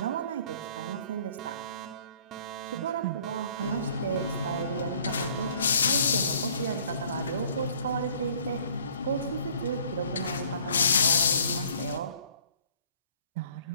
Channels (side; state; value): both; inverted; correlation -0.58